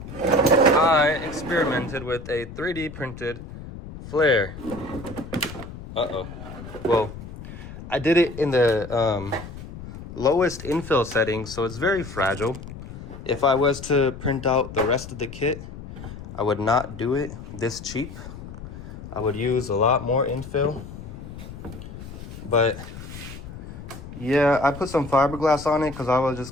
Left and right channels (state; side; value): noise; left; rumble, 12 dB below the sound